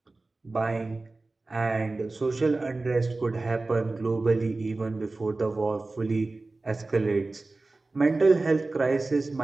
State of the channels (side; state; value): left; quieter; 3.3 dB